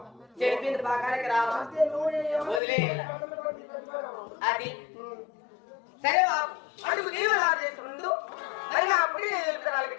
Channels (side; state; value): right; drops out; at 2.6 s